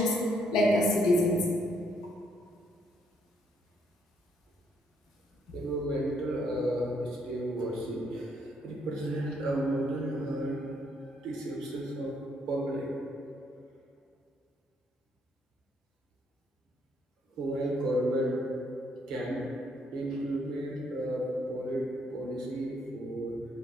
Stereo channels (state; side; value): normal; both; correlation 0.72